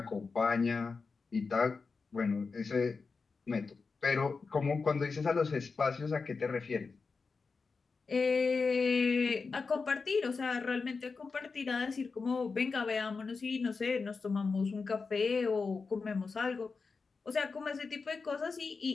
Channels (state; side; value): quieter; right; 4.6 dB